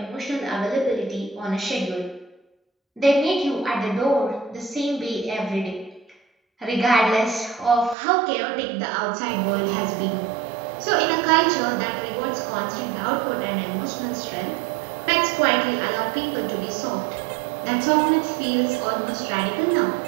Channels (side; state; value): left; drops out; at 8.0 s